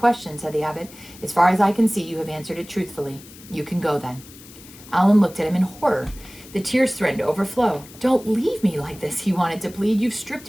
said the abbot. As far as I can see, you have answered it truthfully. You can go then. Alan looked at him in horror. The tears threatened to overflow. Don't leave me like this, he wanted to plead. You've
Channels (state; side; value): noise; left; hiss, 20 dB below the sound